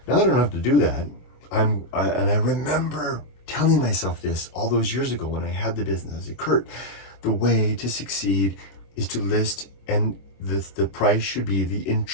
Now that I don't have to do that, and I remember telling myself this all those years ago when I had the business. I said, Kurt, the way to succeed is to list, and the price should be the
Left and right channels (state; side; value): late; right; 24 ms